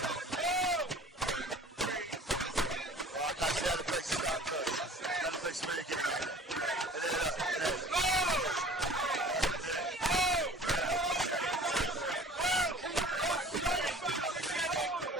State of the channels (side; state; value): both; normal; correlation 0.46